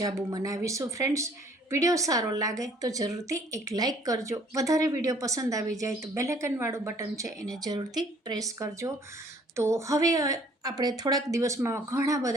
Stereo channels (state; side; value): normal; both; correlation 0.58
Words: બનાવીશું। ફ્રેન્ડ્સ, વિડીયો સારો લાગે તો જરૂરથી એક લાઇક કરજો। વધારે વિડીયો પસંદ આવી જાય તો બેલ આઇકનવાળું બટન છે એને જરૂરથી પ્રેસ કરજો। તો હવે આપણે થોડાક દિવસમાં ઘણા